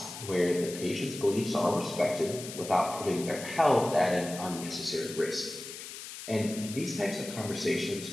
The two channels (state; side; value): noise; left; hiss, 11 dB below the sound